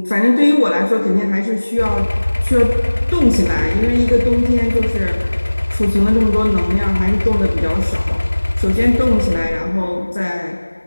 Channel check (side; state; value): both; inverted; correlation -1.00